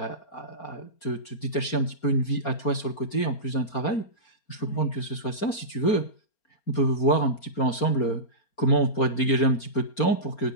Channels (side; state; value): right; late; 4.3 ms